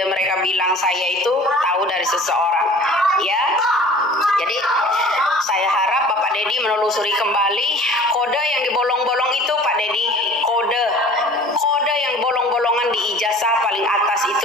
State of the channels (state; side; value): normal; both; correlation 0.46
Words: mereka bilang saya itu tahu dari seseorang. Ya, jadi saya harap Bapak Dedi menelusuri kembali kode yang dibolong-bolong itu Pak Dedi, kode yang bolong-bolongan di ijazah paling atas